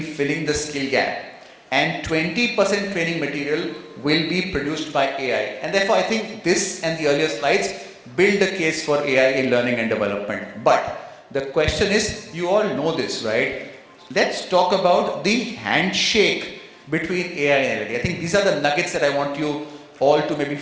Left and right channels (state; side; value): identical; both; correlation 1.00